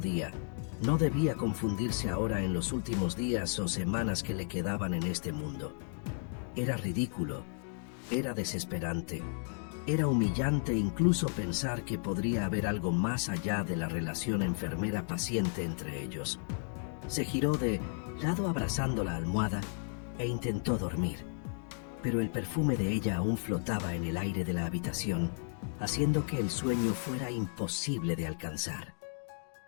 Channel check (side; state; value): right; silent; 55 dB below the other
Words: debía confundirse ahora en los últimos días o semanas que le quedaban en este mundo. Era ridículo, era desesperante, era humillante incluso pensar que podría haber algo más allá de la relación enfermera-paciente entre ellos. Se giró de lado abrazando la almohada e intentó dormir, pero el perfume de ella aún flotaba en el aire de la habitación, haciendo que el sueño fuera imposible de alcanzar.